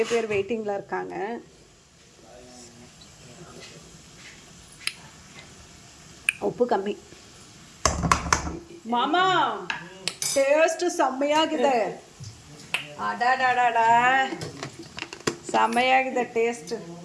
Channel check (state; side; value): identical; both; correlation 1.00